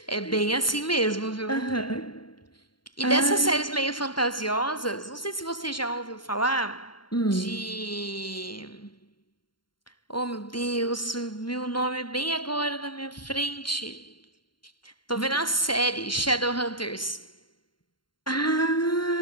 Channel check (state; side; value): late; right; 0.72 ms